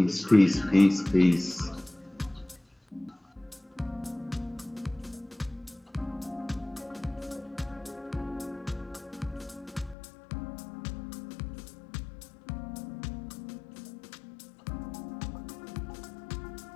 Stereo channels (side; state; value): right; drops out; at 10.0 s